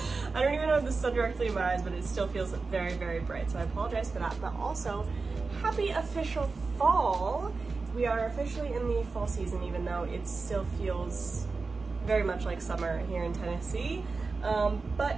I don't even know if the sun directly in my eyes, but it still feels very, very bright, so I apologize for that. But also, happy official fall! We are officially in the fall season, even though it still feels very much like summer here in Tennessee.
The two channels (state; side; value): quieter; left; 4.2 dB